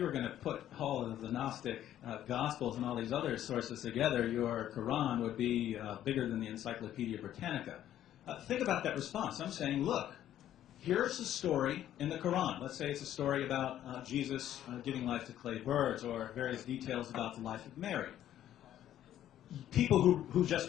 were going to put all of the Gnostic Gospels and all these other sources together, your Quran would be bigger than the Encyclopedia Britannica. Think about that response. I'm saying, look, here's a story in the Quran. Let's say it's a story about Jesus giving life to clay birds, or various details about the life of Mary. People who just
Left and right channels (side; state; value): right; quieter; 11.8 dB